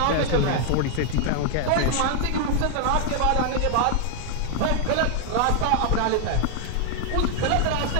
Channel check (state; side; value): different; both; correlation 0.00